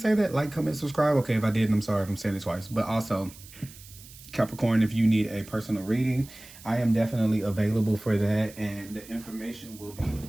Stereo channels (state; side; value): noise; right; hiss, 19 dB below the sound